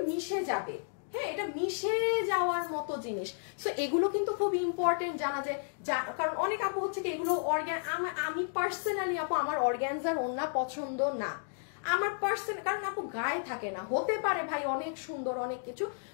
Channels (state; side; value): silent; right; digital silence